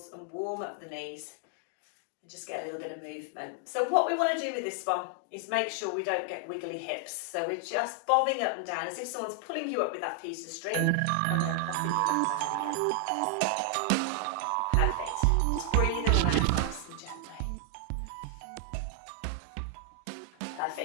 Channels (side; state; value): both; different; correlation 0.00